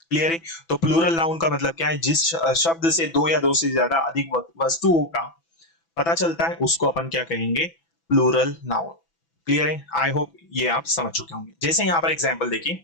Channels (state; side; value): late; right; 6.0 ms